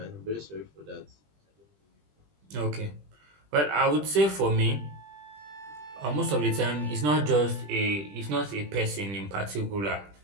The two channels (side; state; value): left; late; 20 ms